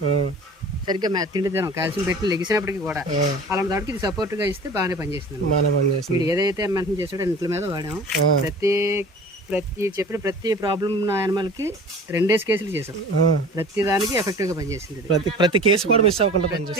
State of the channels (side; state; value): both; normal; correlation 0.41